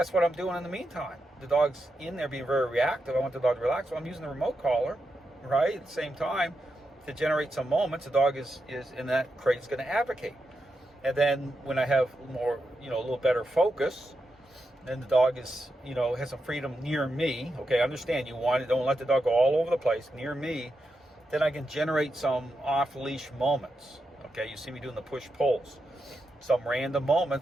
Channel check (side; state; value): both; normal; correlation 0.86